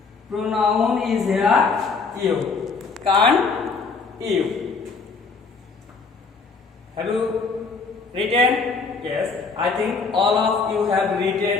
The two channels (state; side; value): quieter; right; 4.6 dB